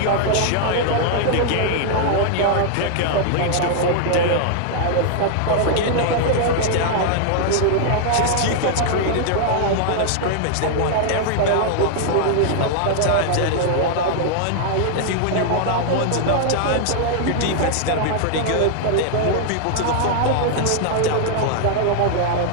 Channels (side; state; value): both; different; correlation -0.01